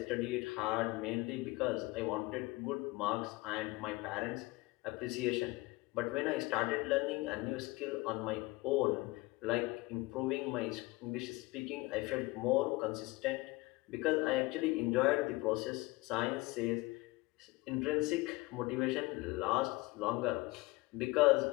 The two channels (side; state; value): right; quieter; 22.3 dB